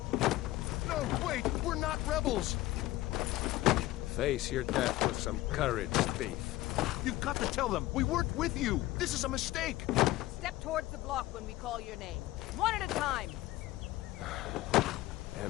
No, wait! We're not rebels! Face your death with some courage, thief. You've got to tell them! We weren't with you! This is a mistake! Step towards the block when we call your name. One at a time.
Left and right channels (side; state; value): right; quieter; 17.1 dB